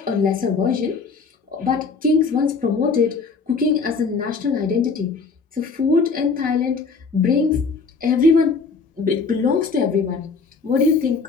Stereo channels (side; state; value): right; quieter; 4.7 dB